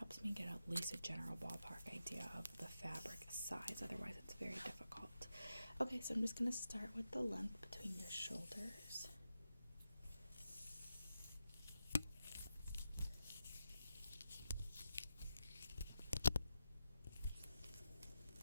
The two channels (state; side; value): inverted; both; correlation -0.90